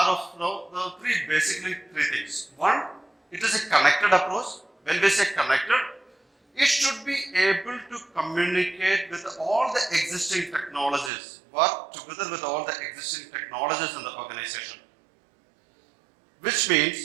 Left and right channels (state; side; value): drops out; left; at 11.1 s